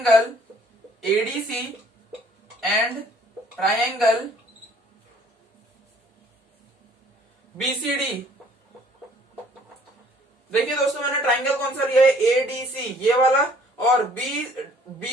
ADC and triangle BCD. देखिए दोस्तों, मैंने ट्राइंगल कौन सा लिया है, एडीसी ये वाला, और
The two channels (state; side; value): normal; both; correlation 0.58